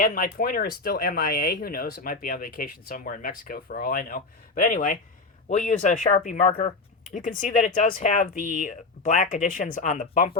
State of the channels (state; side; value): quieter; right; 3.7 dB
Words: my pointer is still MIA. Who knows? It might be on vacation somewhere in Mexico for all I know. But anyway, we'll use a Sharpie marker. You can see that it does have the black additions on the